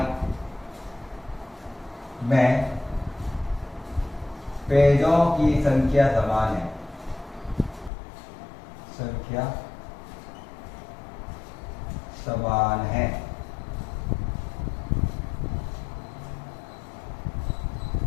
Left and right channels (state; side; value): drops out; right; at 7.9 s